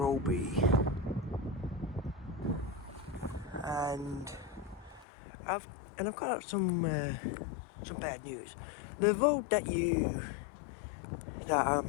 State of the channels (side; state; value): right; drops out; at 5.1 s